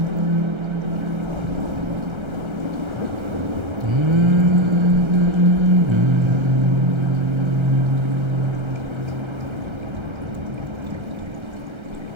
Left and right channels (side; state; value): left; late; 1.3 ms